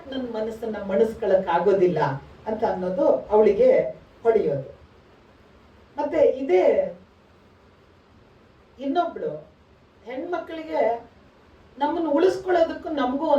ನನ್ನ ಮನಸ್ಸನ್ನ ಮಣಿಸ್ಕೊಳಕ್ ಆಗೋದಿಲ್ಲ ಅಂತ ಅನ್ನೋದು ಅವಳಿಗೆ ಹೊಡೆಯೋದು. ಮತ್ತೆ ಇದೇ ಇನ್ನೊಬ್ಳು ಹೆಣ್ಮಕ್ಳಿಗೆ ನಮ್ಮನ್ನು ಉಳಿಸ್ಕೊಳ್ಳೋದಕ್ಕೂ ನಮಗೂ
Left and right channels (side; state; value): both; identical; correlation 1.00